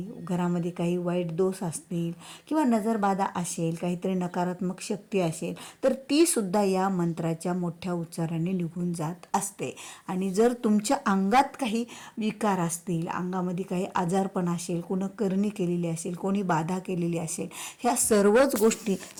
घरामध्ये काही वाईट दोष असतील किंवा नजरबाधा असेल, काहीतरी नकारात्मक शक्ती असेल, तर ती सुद्धा या मंत्राच्या मोठ्या उच्चाराने निघून जात असते. आणि जर तुमच्या अंगात काही विकार असतील, अंगामध्ये काही आजारपण असेल, कोणी करणी केलेली असेल, कोणी बाधा केलेली असेल, ह्या सर्वच गोष्टी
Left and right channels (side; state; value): both; identical; correlation 1.00